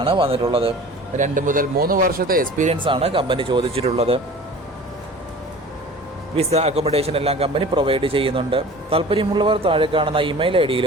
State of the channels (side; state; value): both; normal; correlation 0.42